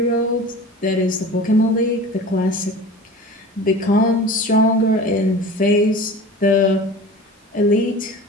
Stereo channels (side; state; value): both; normal; correlation 0.37